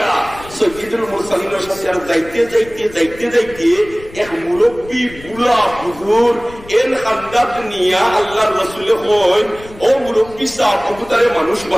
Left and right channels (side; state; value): left; noise; rumble, 19 dB below the sound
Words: সৈয়দুল মুরসালিনের সাথে। আর যাইতে এক মুরব্বী বুড়া হুজুর এর খান্দাত নিয়া আল্লাহর রাসূলে কইন ও মুরব্বী সাহেব কবুতরে মানুষ